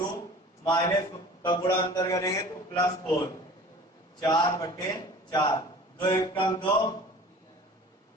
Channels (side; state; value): both; normal; correlation 0.43